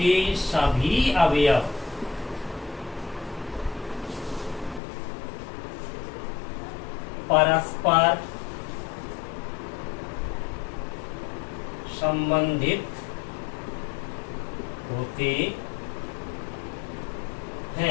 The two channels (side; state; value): right; drops out; at 4.8 s